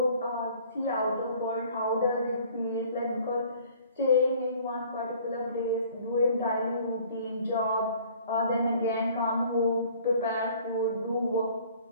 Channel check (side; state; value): both; inverted; correlation -0.53